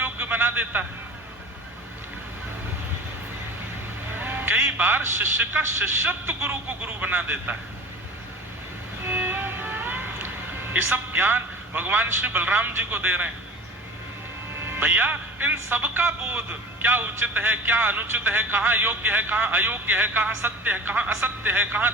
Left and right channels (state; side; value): normal; both; correlation 0.38